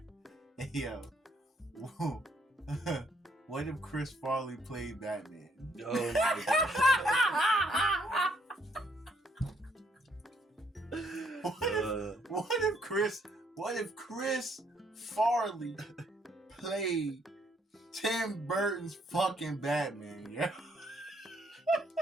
Hey, yo. What if Chris Farley played Batman? Oh my gosh. What if Chris Farley played Tim Burton's fucking Batman, yeah?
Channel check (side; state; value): both; normal; correlation 0.69